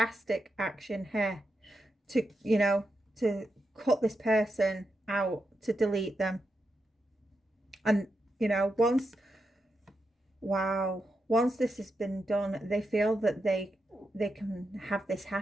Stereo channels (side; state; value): both; normal; correlation 0.86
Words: to, you know, to cut this person out, to delete them. And, you know, once this has been done, they feel that they can have this